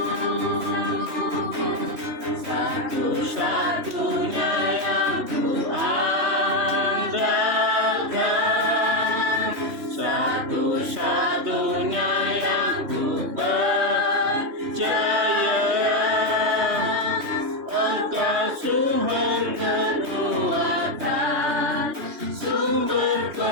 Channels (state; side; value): late; left; 3.2 ms